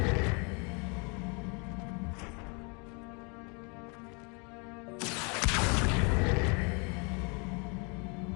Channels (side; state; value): right; quieter; 33.9 dB